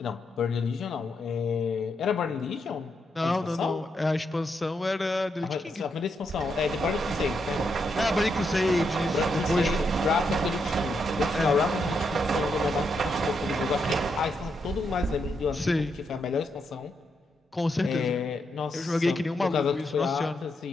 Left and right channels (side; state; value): both; normal; correlation 0.81